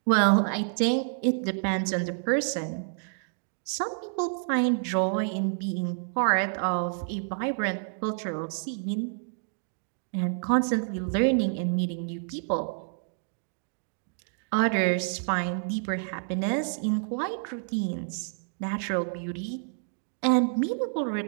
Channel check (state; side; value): silent; left; digital silence